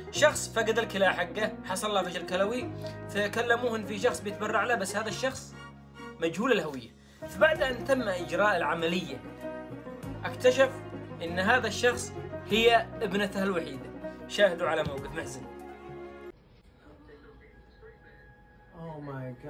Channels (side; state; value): both; identical; correlation 1.00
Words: شخص فقد الكلى حقه، حصل له فشل كلوي، فكلموه ان في شخص بيتبرع له، بس هذا الشخص مجهول الهوية. فبعد ان تم اجراء العملية اكتشف ان هذا الشخص هي ابنته الوحيدة. شاهدوا على موقف محزن. Oh my